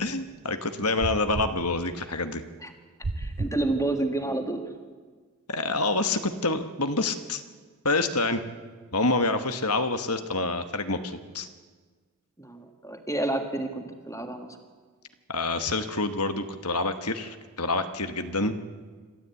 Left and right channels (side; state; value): both; normal; correlation 0.03